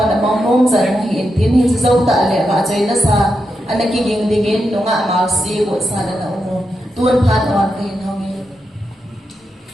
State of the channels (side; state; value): both; normal; correlation 0.86